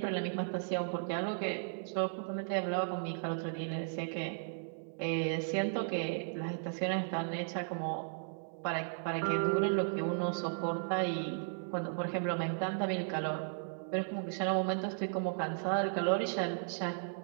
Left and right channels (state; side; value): silent; left; 54 dB below the other